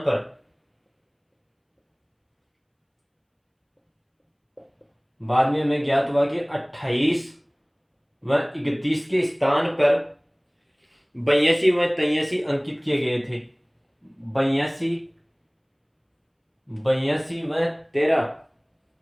बाद में हमें ज्ञात हुआ कि 28 व 31 के स्थान पर 82 व 83 अंकित किए गए थे, 82 82 व 13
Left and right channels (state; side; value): identical; both; correlation 1.00